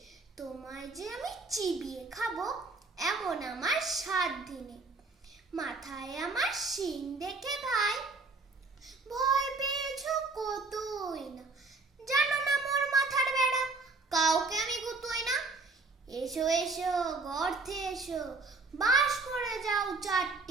তোমায় যে আমি চিবিয়ে খাবো এমন আমার সাধ্য নেই। মাথায় আমার শিং দেখে ভাই ভয় পেয়েছো কতই না। জানো না মোর মাথার বেড়া, কাউকে আমি গুতোই না। এসো এসো গর্তে এসো, বাস করে যাও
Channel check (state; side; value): quieter; left; 3.8 dB